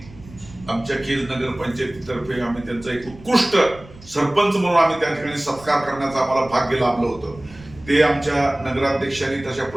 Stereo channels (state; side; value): noise; right; rumble, 20 dB below the sound